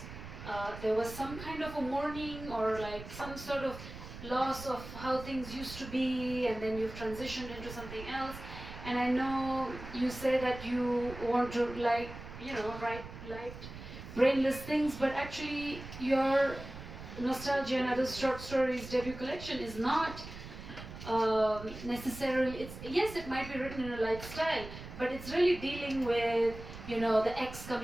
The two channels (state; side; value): noise; right; rumble, 12 dB below the sound